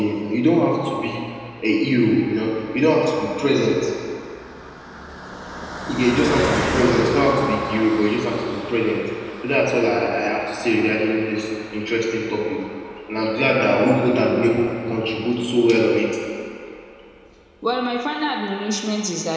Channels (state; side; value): identical; both; correlation 1.00